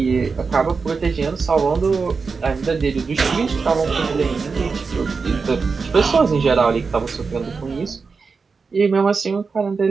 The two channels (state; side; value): quieter; left; 4.8 dB